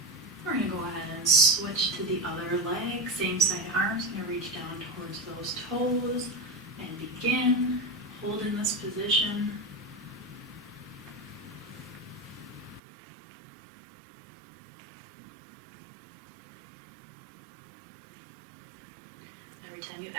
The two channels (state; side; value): drops out; left; at 12.8 s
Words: We're going to go ahead and switch to the other leg. Same side arms, going to reach down towards those toes and begin. Hold in this position. Every time you